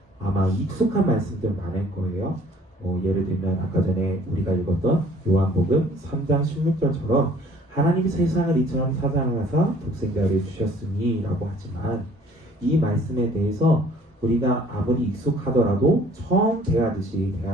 아마 익숙한 말씀들 많을 거예요. 예를 들면 아까 전에 우리가 읽었던 요한복음 3장 16절처럼 하나님이 세상을 이처럼 사랑하사 독생자를 주셨으니 라고 하지만 이 말씀에 대해서 우리가 아무리 익숙하더라도 처음 대하듯이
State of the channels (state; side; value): normal; both; correlation 0.56